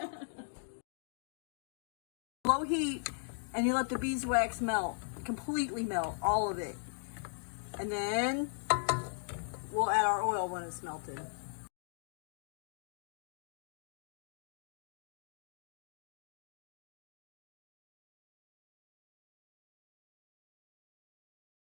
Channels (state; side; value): silent; right; digital silence